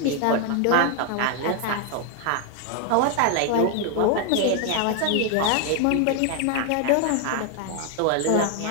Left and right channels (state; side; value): different; both; correlation 0.00